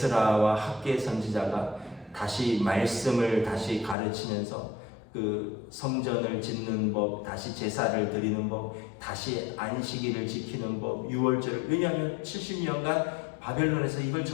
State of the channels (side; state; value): right; drops out; at 4.0 s